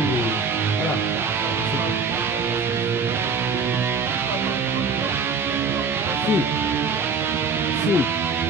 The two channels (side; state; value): left; quieter; 4.5 dB